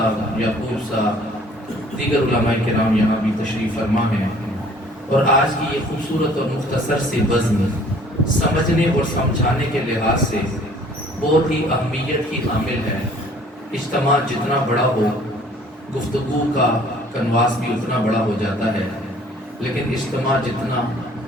یعقوب صاحب، دیگر علماء کرام یہاں بھی تشریف فرما ہیں، اور آج کی یہ خوبصورت اور مختصر سی بزم سمجھنے اور سمجھانے کے لحاظ سے بہت ہی اہمیت کی حامل ہے۔ اجتماع جتنا بڑا ہو، گفتگو کا کنواس بھی اتنا بڑا ہو جاتا ہے، لیکن اجتماع جتنا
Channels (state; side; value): normal; both; correlation 0.55